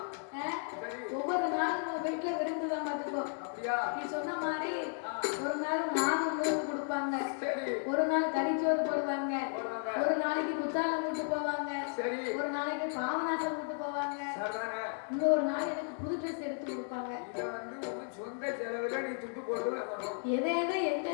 ஒவ்வொரு நாளும் உன் வீட்டுல விருந்துதான் பார்த்துக்கோ. நீ சொன்ன மாதிரி ஒரு நாள் மாவு நூறு கொடுப்பாங்க, ஒரு நாள் கறிச்சோறு போடுவாங்க, ஒரு நாளைக்கு குத்தாலம் விட்டு போவாங்க, ஒரு நாளைக்கு பாவநாசம் விட்டு போவாங்க, இன்னொரு நாள் எனக்கு புது ட்ரெஸ் எடுத்து கொடுப்பாங்க. எதை எதை எங்க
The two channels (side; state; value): right; silent; 55 dB below the other